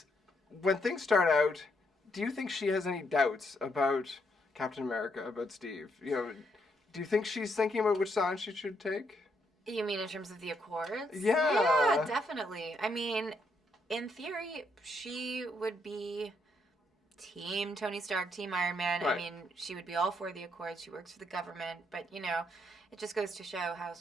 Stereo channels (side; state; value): both; normal; correlation 0.75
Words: when things start out, do you think she has any doubts about Captain America, about Steve? Do you think she's thinking about which side she should take? You mean in terms of the Accords? Yeah. Yeah, definitely. I mean, in theory, she would be Team Tony Stark, Team Iron Man. Right. I mean, she would be all for the Accords. She works for the government. But, it just goes to show how